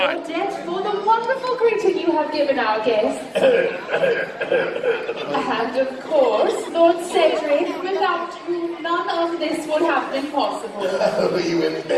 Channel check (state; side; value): identical; both; correlation 1.00